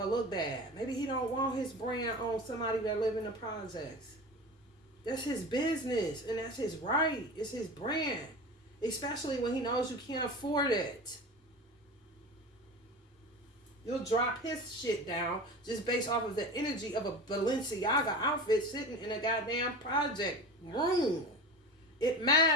look bad. Maybe he don't want his brand on somebody that live in the projects. That's his business, and that's his right. It's his brand, especially when he knows you can't afford it. You'll drop his shit down just based off of the energy of a Balenciaga outfit sitting in a goddamn project room. It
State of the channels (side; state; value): both; normal; correlation 0.31